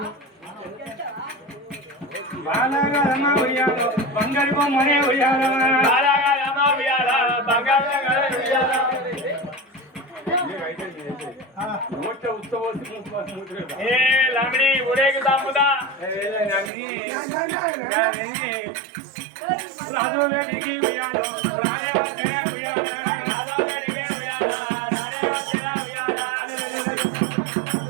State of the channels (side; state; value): left; drops out; at 16.7 s